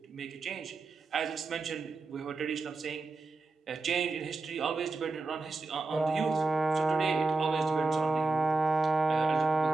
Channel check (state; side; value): quieter; left; 3.7 dB